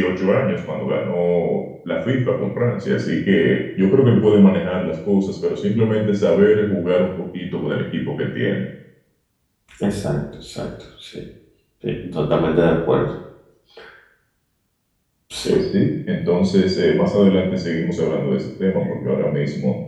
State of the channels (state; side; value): identical; both; correlation 1.00